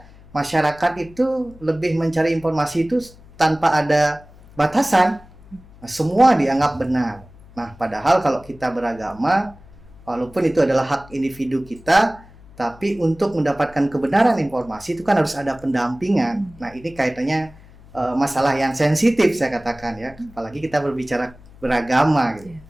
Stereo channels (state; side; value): noise; left; hum, 23 dB below the sound